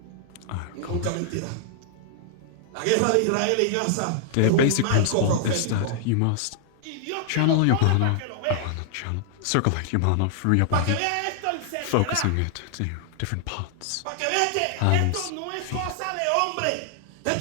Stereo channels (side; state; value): both; different; correlation 0.00